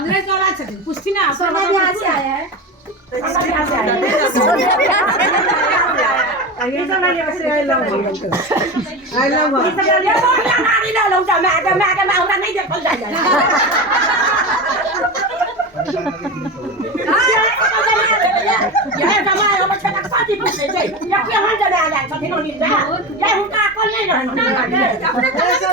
कौन आ सकते पूछती ना सोना भी यहाँ से आया है ये सब ना यहाँ से आई लव ये सब ये तो नानी ना लौटा मैं हमरा नहीं देखल जाए ये जमाए हम छटा साथी पूछे छै या के हम जने आ जाए छथिन ओनी जा ये हुनका अकल नहीं रहन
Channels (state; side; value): normal; both; correlation 0.23